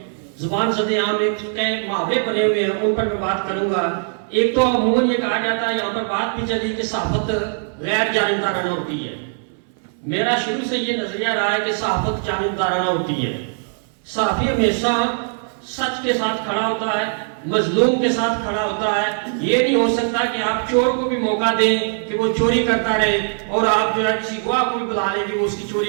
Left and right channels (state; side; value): silent; left; 62 dB below the other